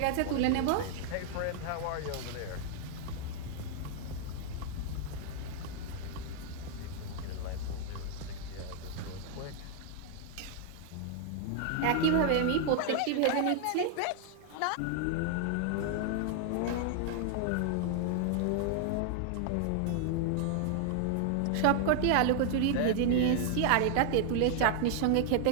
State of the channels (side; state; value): both; different; correlation 0.00